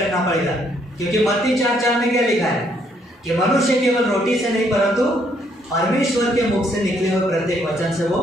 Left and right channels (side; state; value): both; normal; correlation 0.70